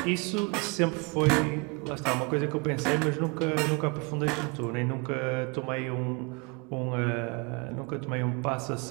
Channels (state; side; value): quieter; left; 30.1 dB